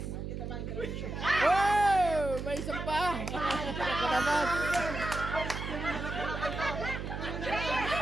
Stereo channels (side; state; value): right; noise; hum, 6 dB below the sound